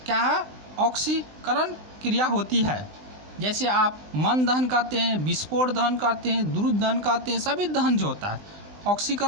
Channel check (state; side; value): late; left; 20 ms